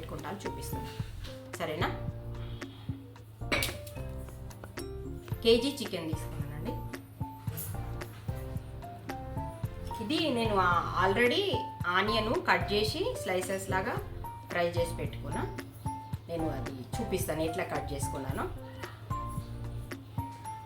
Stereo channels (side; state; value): both; identical; correlation 1.00